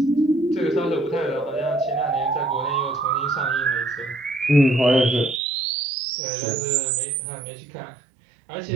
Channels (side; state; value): left; drops out; at 5.4 s